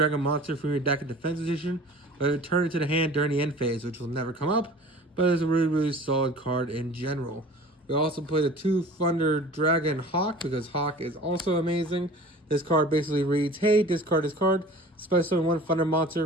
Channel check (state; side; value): normal; both; correlation 0.43